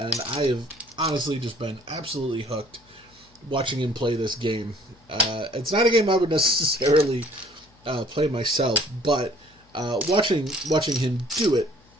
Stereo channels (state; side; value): noise; left; hum, 30 dB below the sound